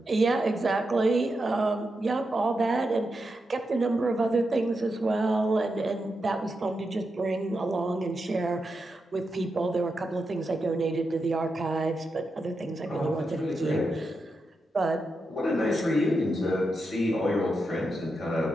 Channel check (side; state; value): both; normal; correlation 0.87